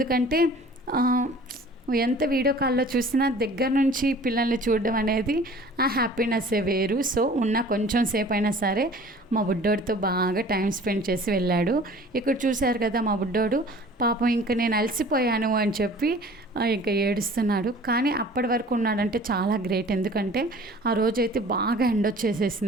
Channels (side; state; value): both; normal; correlation 0.48